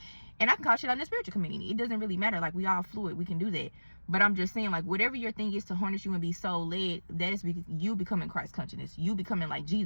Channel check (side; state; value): both; inverted; correlation -1.00